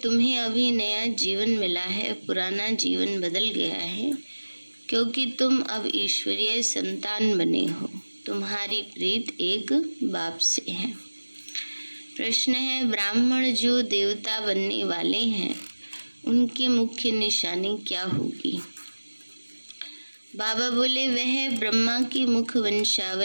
अभी नया जीवन मिला है, पुराना जीवन बदल गया है, क्योंकि तुम अब ईश्वरीय संतान बने हो। तुम्हारी प्रीत एक बाप से है। प्रश्न है, ब्राह्मण जो देवता बनने वाले हैं उनकी मुख्य निशानी क्या होगी? बाबा बोले, वह ब्रह्मा की मुख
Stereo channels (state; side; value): inverted; both; correlation -1.00